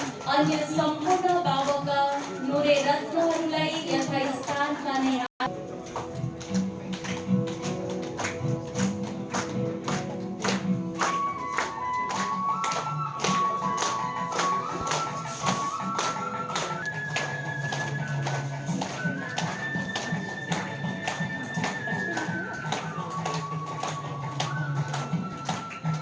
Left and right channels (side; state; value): both; identical; correlation 1.00